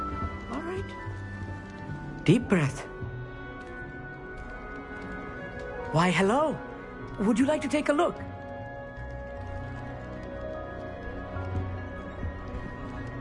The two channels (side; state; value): both; identical; correlation 1.00